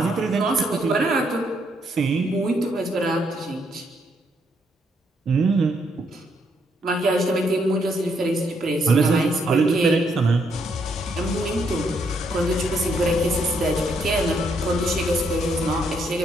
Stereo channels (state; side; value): normal; both; correlation 0.74